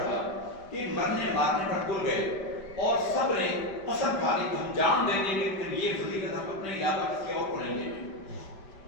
کہ مرنے مارنے پر تل گئے، اور سب نے قسم کھا لی کہ ہم جان دیں گے لیکن یہ فضیلت ہم اپنے علاوہ کسی اور کو نہیں دیں گے۔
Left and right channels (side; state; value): right; late; 5.1 ms